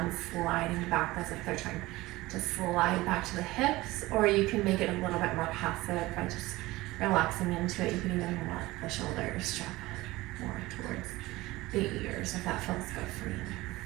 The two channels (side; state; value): left; quieter; 19.3 dB